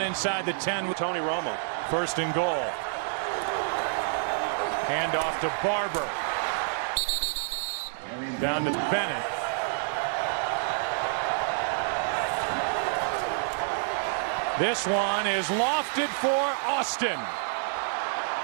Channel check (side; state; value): left; silent; digital silence